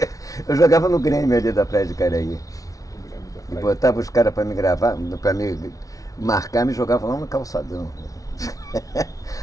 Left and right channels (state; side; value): late; right; 0.17 ms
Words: Eu jogava no Grêmio ali da Praia de Caraí. E botava os caras para me gravar, para me marcar, me jogava lá no calçadão.